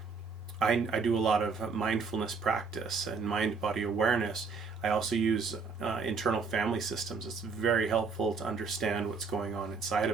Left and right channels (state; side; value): quieter; left; 4.9 dB